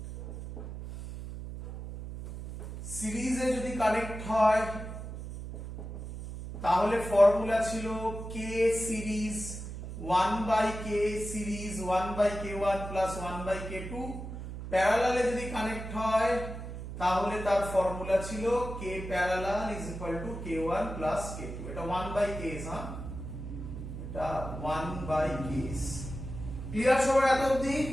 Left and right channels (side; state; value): right; noise; hum, 8 dB below the sound